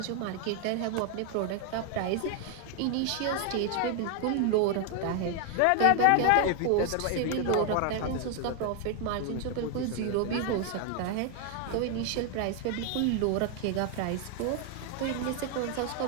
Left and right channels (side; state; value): both; different; correlation 0.00